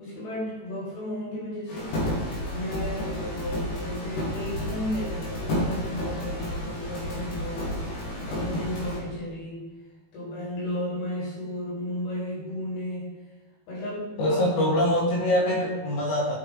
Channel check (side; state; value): right; late; 18 ms